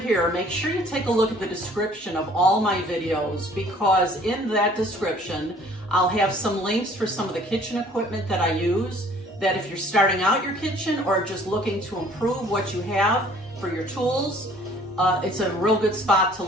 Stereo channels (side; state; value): both; normal; correlation 0.55